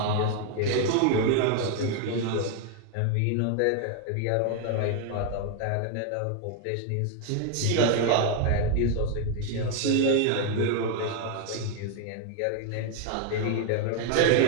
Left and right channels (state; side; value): different; both; correlation 0.01